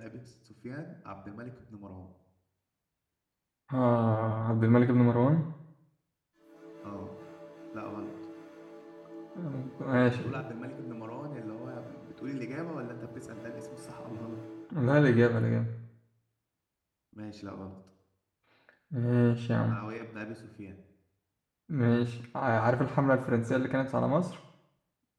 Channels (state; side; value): identical; both; correlation 1.00